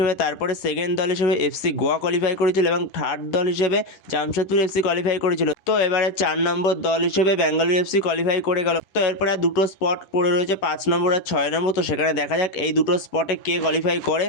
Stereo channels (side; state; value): right; late; 10 ms